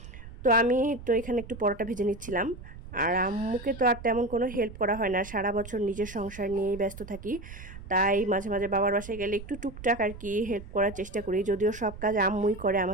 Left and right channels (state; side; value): noise; right; rumble, 14 dB below the sound